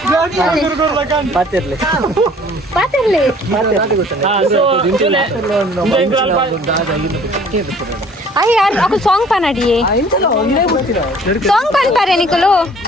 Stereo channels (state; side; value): normal; both; correlation 0.53